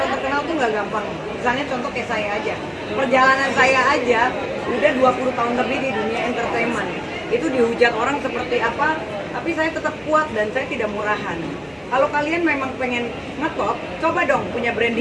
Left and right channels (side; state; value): both; identical; correlation 1.00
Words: terkenal tuh nggak gampang. Misalnya contoh kayak saya aja, perjalanan saya aja udah 20 tahun lebih di dunia entertainment. Itu dihujat orang seperti apa, tapi saya tetap kuat dan saya tidak murahan. Kalau kalian memang pengen ngetop, coba dong punya